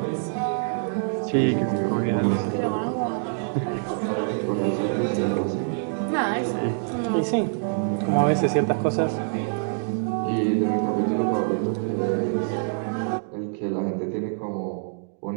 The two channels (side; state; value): left; silent; digital silence